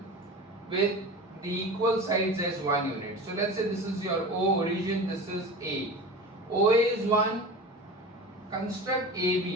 with the equal sides as 1 unit. So let's say this is your O origin, this is A. OA is 1. Construct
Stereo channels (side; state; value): both; normal; correlation 0.32